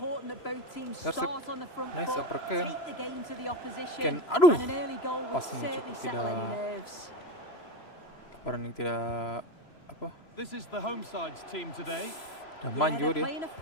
that both teams start on the front foot, take the game to the opposition, and an early goal will certainly settle any nerves. This is the home side's team today. Yeah, they're playing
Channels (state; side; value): late; right; 3.0 ms